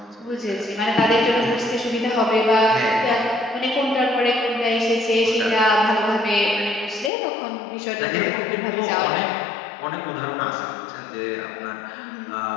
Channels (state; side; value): drops out; right; at 7.1 s